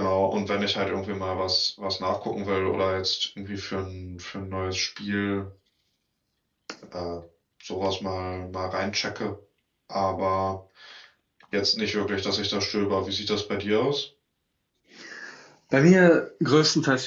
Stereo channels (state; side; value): identical; both; correlation 1.00